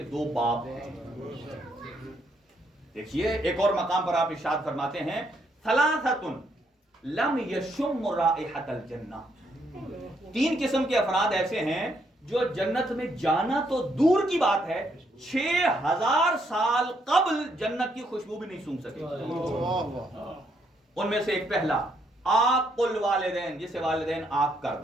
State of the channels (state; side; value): normal; both; correlation 0.74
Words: دو باپ ہیں۔ دیکھیے ایک اور مقام پر آپ ارشاد فرماتے ہیں ثلاثۃ لم یشم رائحۃ الجنہ، 3 قسم کے افراد ایسے ہیں جو جنت میں جانا تو دور کی بات ہے 6000 سال قبل جنت کی خوشبو بھی نہیں سونگھ سکے۔ ان میں سے ایک پہلا عاق الوالدین، جسے والدین عاق کر